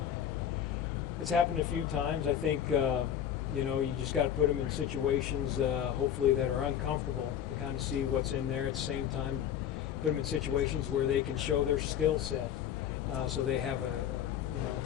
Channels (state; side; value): quieter; right; 9.7 dB